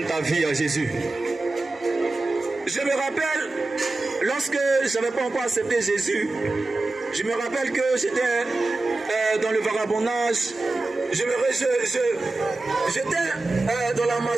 ta vie à Jésus. Je me rappelle, lorsque je n'avais pas encore accepté Jésus, je me rappelle que j'étais dans le vagabondage, j'étais dans la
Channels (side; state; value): left; quieter; 3.1 dB